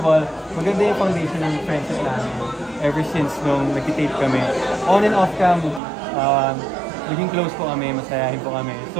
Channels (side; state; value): left; drops out; at 5.8 s